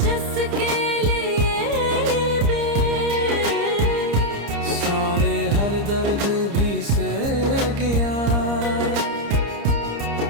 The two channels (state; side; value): late; left; 30 ms